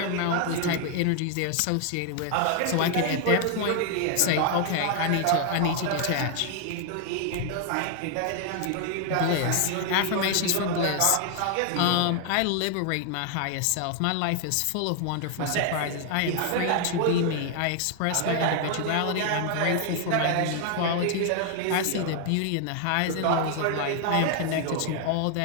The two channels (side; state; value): both; different; correlation 0.00